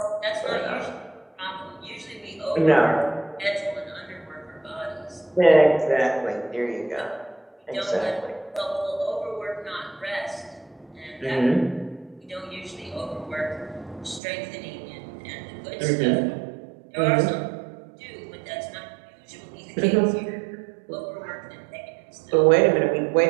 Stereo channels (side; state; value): left; drops out; at 14.2 s